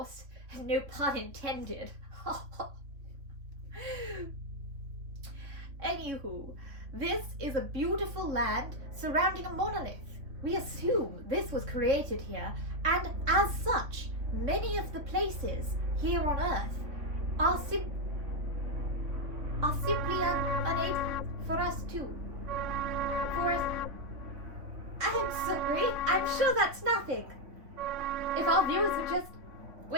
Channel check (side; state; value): left; late; 3.6 ms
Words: No pun intended. Anywho, this is a beautiful land surrounding a monolith. We assume this was created here, and as such, many of the places here on Earth are simply unable for us to. I'm sorry, I'm sure that's nothing. If our viewers would just